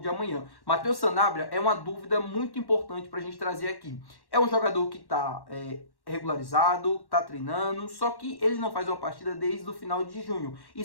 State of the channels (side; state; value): right; late; 1.1 ms